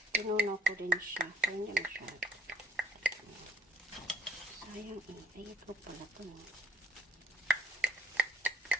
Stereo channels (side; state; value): both; normal; correlation 0.64